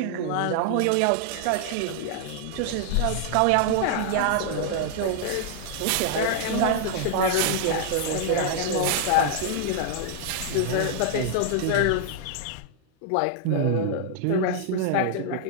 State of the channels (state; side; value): different; both; correlation -0.01